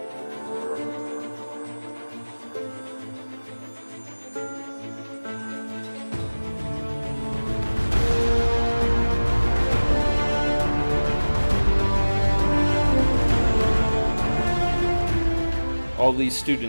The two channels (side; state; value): both; inverted; correlation -1.00